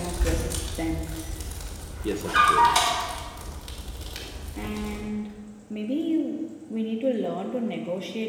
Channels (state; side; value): identical; both; correlation 1.00